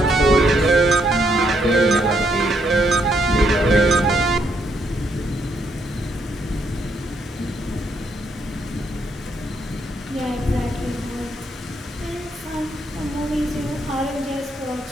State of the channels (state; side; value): normal; both; correlation 0.74